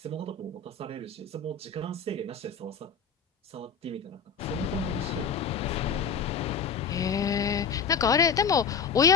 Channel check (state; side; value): quieter; right; 5.9 dB